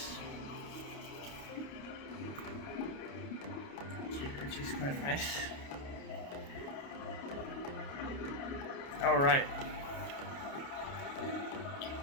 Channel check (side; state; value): right; late; 29 ms